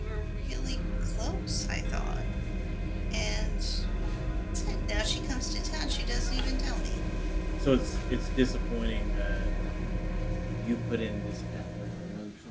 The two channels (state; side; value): identical; both; correlation 1.00